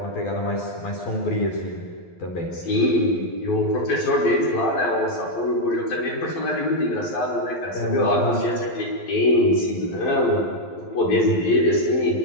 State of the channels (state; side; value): late; right; 12 ms